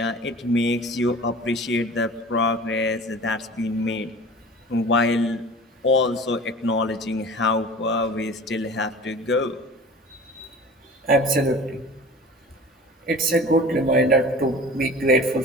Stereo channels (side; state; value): both; normal; correlation 0.40